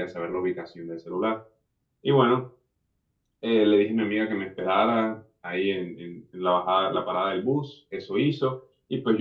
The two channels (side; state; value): both; identical; correlation 1.00